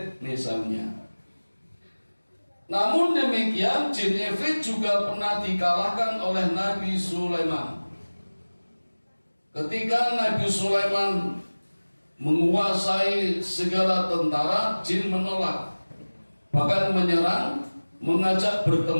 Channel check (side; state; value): both; inverted; correlation -1.00